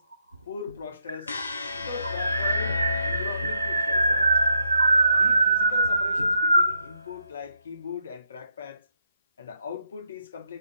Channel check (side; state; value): both; inverted; correlation -0.78